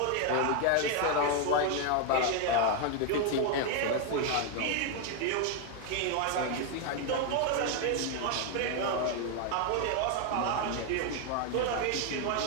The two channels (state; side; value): different; both; correlation 0.01